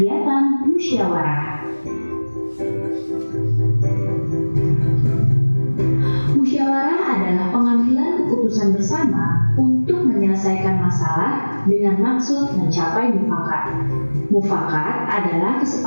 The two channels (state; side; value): inverted; both; correlation -1.00